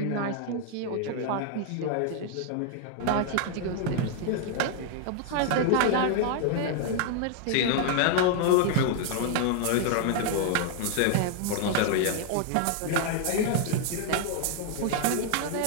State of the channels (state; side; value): different; both; correlation 0.00